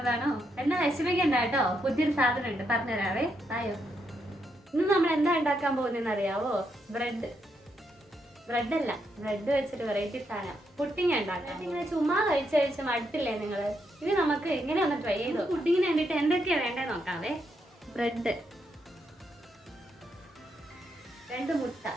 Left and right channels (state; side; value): normal; both; correlation 0.79